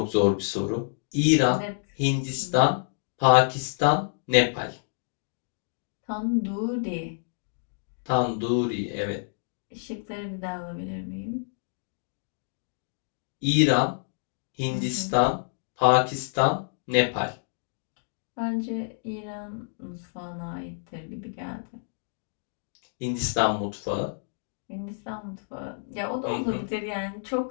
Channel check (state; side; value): silent; right; digital silence